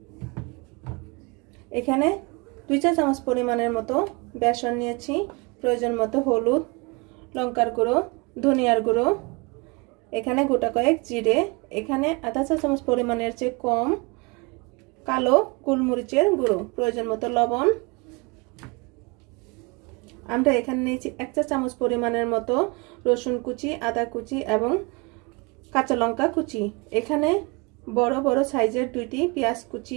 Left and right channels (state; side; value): quieter; left; 28.5 dB